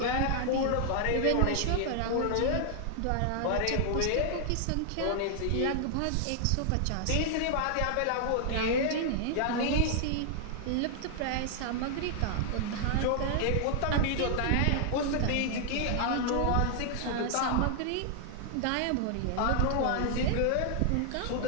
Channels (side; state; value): both; different; correlation 0.00